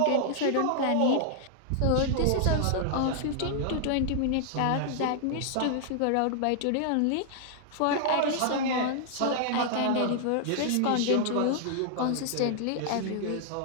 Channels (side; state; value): both; different; correlation -0.01